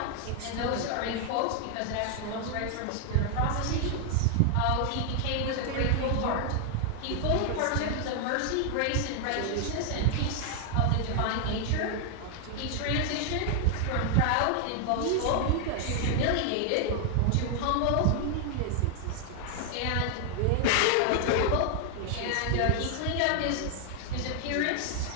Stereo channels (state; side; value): different; both; correlation 0.00